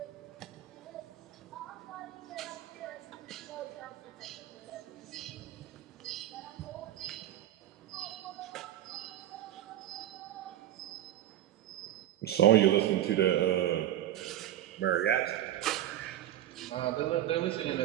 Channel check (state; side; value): quieter; left; 12.6 dB